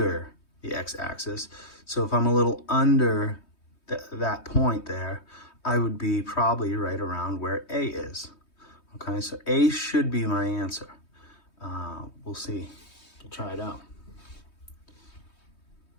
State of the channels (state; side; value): late; right; 3.2 ms